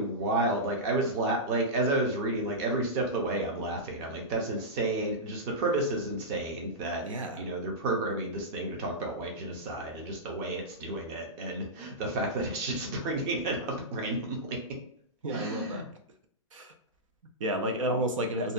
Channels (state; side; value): normal; both; correlation -0.12